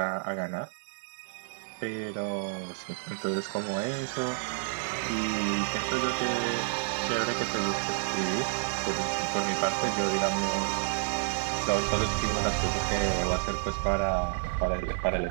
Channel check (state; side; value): silent; left; 58 dB below the other